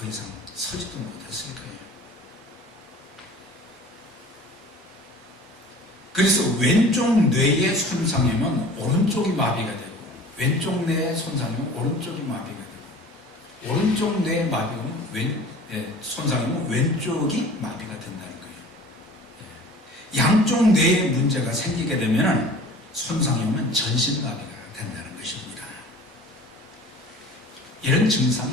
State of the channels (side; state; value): both; normal; correlation 0.44